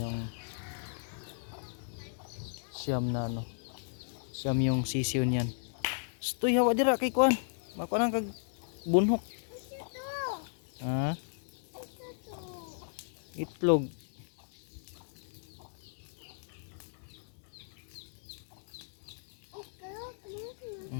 siyam na siyam yung sisiyo niyan. Stoy hawa dira kay kuan. Mako nang kag bunhok. Ha? Itlog.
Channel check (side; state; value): right; silent; digital silence